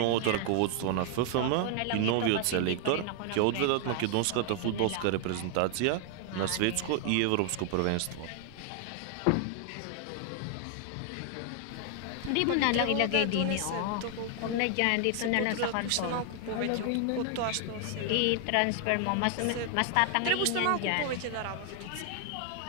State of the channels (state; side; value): different; both; correlation 0.00